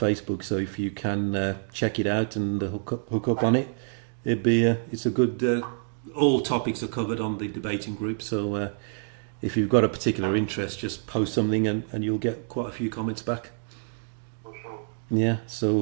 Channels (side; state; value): left; silent; digital silence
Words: So if you can check it out and hook up on it, it's a good. All topics are covered on the debating group. So if you've got a particular interest, just post something and you'll get quite a few comments back. For sure. Yeah.